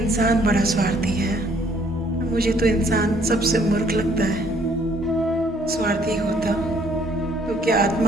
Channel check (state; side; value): normal; both; correlation 0.63